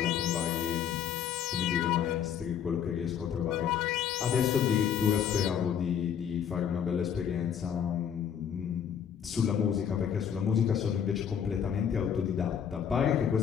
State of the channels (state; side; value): quieter; right; 8.3 dB